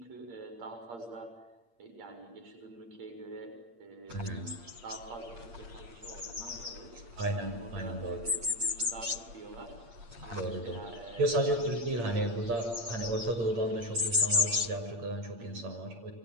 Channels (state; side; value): late; left; 8.6 ms